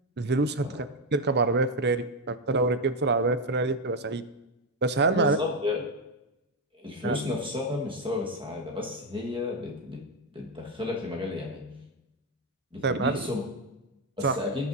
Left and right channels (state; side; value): normal; both; correlation 0.07